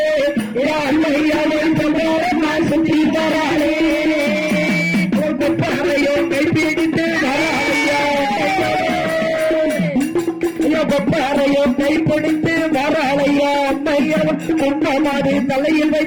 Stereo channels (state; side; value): identical; both; correlation 1.00